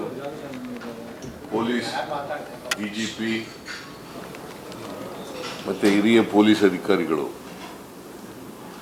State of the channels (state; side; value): identical; both; correlation 1.00